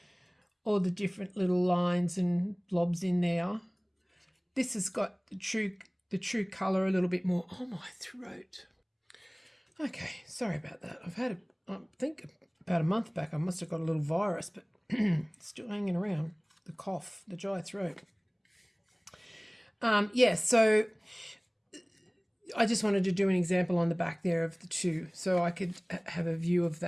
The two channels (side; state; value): both; identical; correlation 1.00